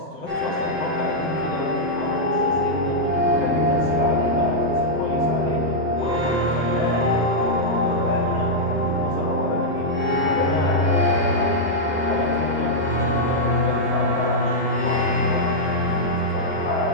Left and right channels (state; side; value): normal; both; correlation -0.06